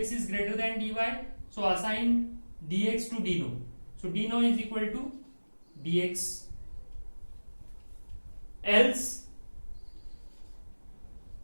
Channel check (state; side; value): inverted; both; correlation -1.00